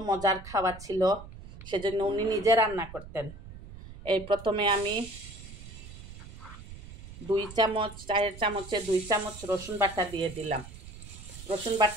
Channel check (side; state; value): right; noise; rumble, 15 dB below the sound